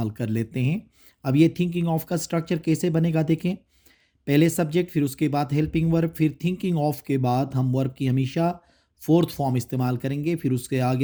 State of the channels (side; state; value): both; identical; correlation 1.00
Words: कर लेते हैं। अब ये थिंकिंग ऑफ का स्ट्रक्चर कैसे बनेगा देखें। पहले सब्जेक्ट, फिर उसके बाद हेल्पिंग वर्ब, फिर थिंकिंग ऑफ के बाद हम वर्ब की हमेशा फोर्थ फॉर्म इस्तेमाल करेंगे, फिर उसके